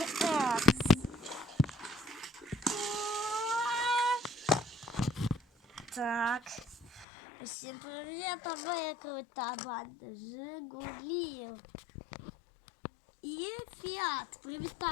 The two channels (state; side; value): drops out; right; at 7.1 s